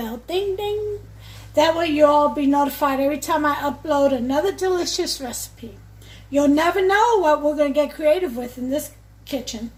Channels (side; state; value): both; identical; correlation 1.00